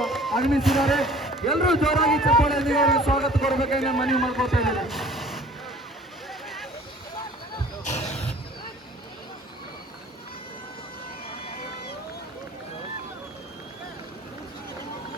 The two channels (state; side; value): normal; both; correlation 0.49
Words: ಆಗಮಿಸಿದ್ದಾರೆ. ಎಲ್ಲರೂ ಜೋರಾಗಿ ಚಪ್ಪಾಳೆಯೊಂದಿಗೆ ಅವರಿಗೆ ಸ್ವಾಗತ ಕೊಡಬೇಕಾಗಿ ನಾನು ಮನವಿ ಮಾಡ್ಕೊಳ್ತಾ ಇದ್ದೇನೆ.